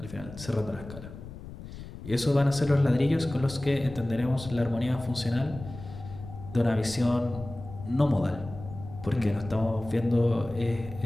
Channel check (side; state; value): left; noise; rumble, 13 dB below the sound